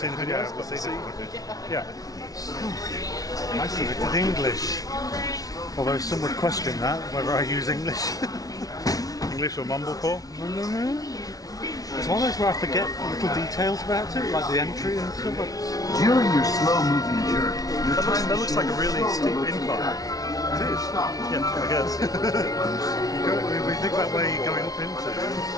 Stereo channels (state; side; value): late; right; 0.18 ms